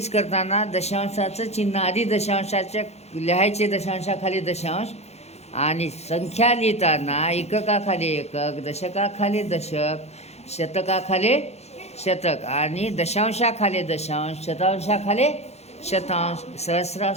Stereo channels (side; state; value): right; late; 0.31 ms